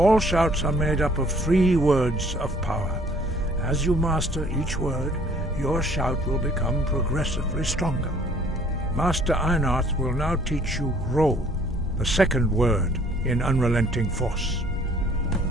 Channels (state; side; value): normal; both; correlation 0.58